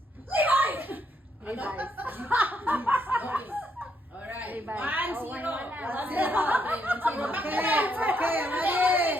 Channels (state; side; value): normal; both; correlation 0.75